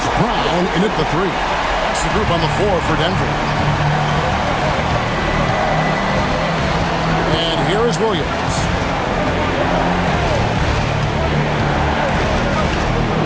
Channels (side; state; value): both; identical; correlation 1.00